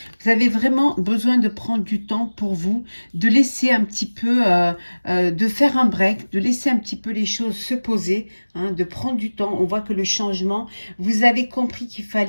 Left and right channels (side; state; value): both; inverted; correlation -1.00